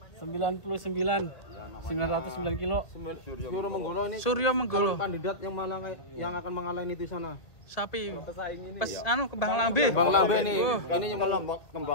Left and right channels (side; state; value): right; late; 2.0 ms